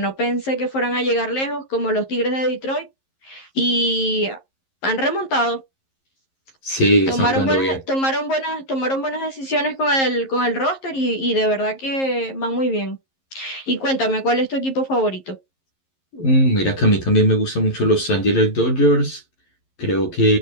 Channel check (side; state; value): right; late; 11 ms